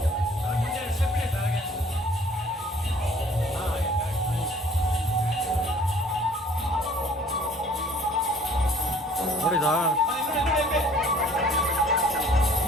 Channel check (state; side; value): normal; both; correlation 0.54